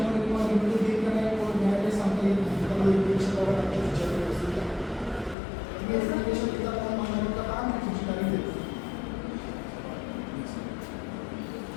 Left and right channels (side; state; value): right; drops out; at 5.4 s